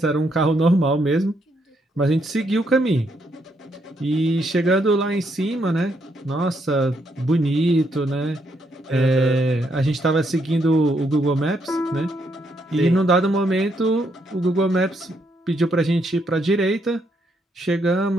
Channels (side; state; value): both; normal; correlation 0.76